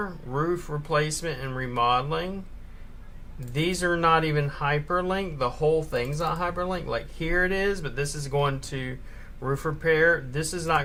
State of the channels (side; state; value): both; identical; correlation 1.00